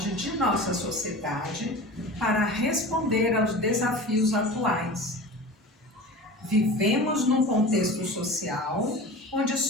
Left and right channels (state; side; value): normal; both; correlation 0.34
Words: de nossa sociedade para responder aos desafios atuais. Vivemos num contexto social onde